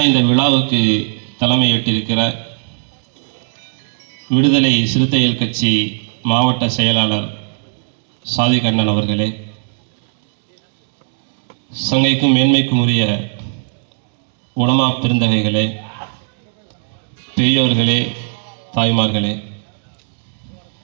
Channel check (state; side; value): silent; left; digital silence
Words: இந்த விழாவுக்கு தலைமையேற்றிருக்கிற விடுதலை சிறுத்தைகள் கட்சி மாவட்ட செயலாளர் சாதிக் அண்ணன் அவர்களே, சங்கைக்கும் மேன்மைக்கும் உரிய உலமா பெருந்தகைகளே, பெரியோர்களே, தாய்மார்களே,